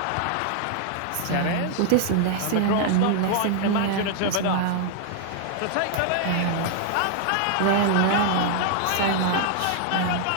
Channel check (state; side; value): different; both; correlation 0.00